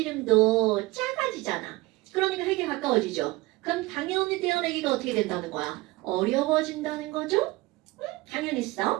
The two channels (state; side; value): quieter; left; 20.9 dB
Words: 작아지잖아. 그러니까 핵에 가까워지죠. 그럼 당연히 떼어내기가 어떻게 된다는 거야? 어려워진다는 거죠?